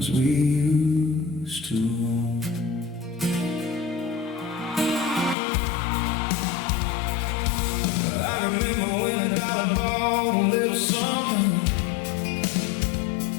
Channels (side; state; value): right; drops out; at 5.4 s